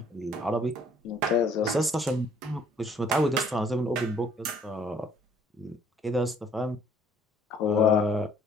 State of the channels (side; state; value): both; normal; correlation 0.60